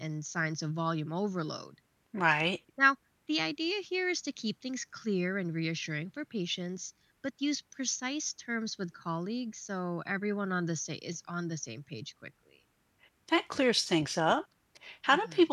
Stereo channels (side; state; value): both; identical; correlation 1.00